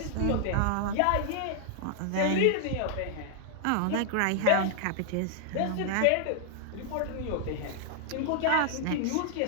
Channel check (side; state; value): both; different; correlation -0.01